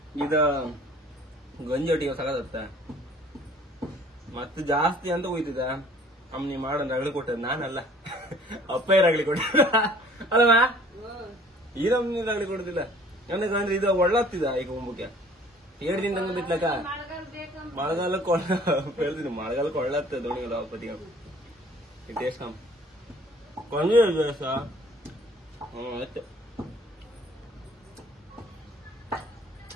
ಇದು ಗಂಜಿ ಒಟ್ಟಿಗೆ ಸಗತ್ತ ಮತ್ತೆ ಜಾಸ್ತಿ ಅಂತ ಹೋಯ್ತಿದ ಅಮ್ಮನಿ ಮಾಡೋನ್ ರಗಳಿ ಕೊಟ್ಟದ್ ನಾನಲ್ಲ ಅಪ್ಪ ರಗಳಿ ಕೊಟ್ಟ ಅಲ್ವಾ ಈ ನಮ್ನಿ ರಗಳಿ ಕೊಡುದಿಲ್ಲ ಅಂದ್ರೆ ಇದು ಒಳ್ಳಾಗ್ತಿದ ಈಗ ಮುಂಬಕ್ಕೆ 7 ದಿನದಂಗ ಬಿತ್ಲಕ್ಕ ಮಳೆಗಾಲಕ್ಕೆ ಹೇಳ್ತೀನಿ ಮಳೆಗಾಲಕ್ಕೆ ಒಳ್ಳಾಗ್ತದೆ ದೋಣಿಗಳು ಪತಿ ಟೇಸ್ಟ್ ಕಮ್ ಕೊಂಜಿ ಆಯ್ತು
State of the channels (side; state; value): both; normal; correlation 0.53